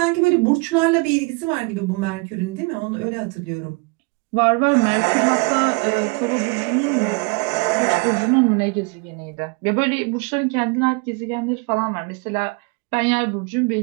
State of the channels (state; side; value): quieter; left; 29.2 dB